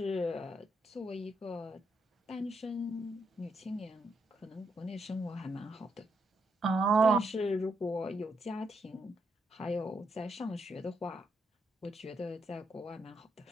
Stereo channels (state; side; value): normal; both; correlation 0.79